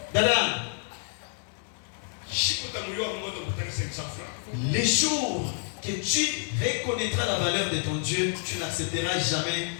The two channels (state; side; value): silent; right; 56 dB below the other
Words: Dada. Les jours que tu reconnaîtras la valeur de ton Dieu, tu n'accepteras jamais